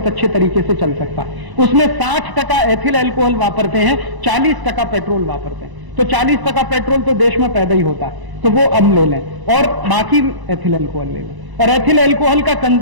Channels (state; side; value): late; left; 1.0 ms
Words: अच्छे तरीके से चल सकता है। उसमें 60% एथिल एल्कोहल वापरते हैं, 40% पेट्रोल वापरते हैं। तो 40% पेट्रोल तो देश में पैदा ही होता है, तो वो अब ले लें, और बाकी एथिल एल्कोहल ले लें। और एथिल एल्कोहल का